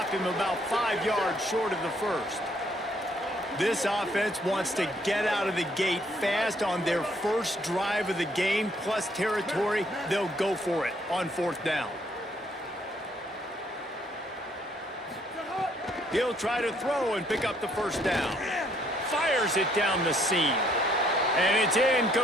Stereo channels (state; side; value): normal; both; correlation 0.67